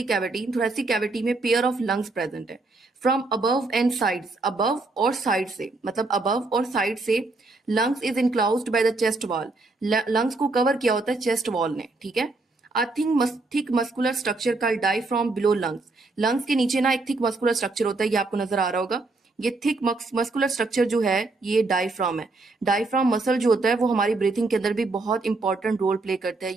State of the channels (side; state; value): left; quieter; 3.4 dB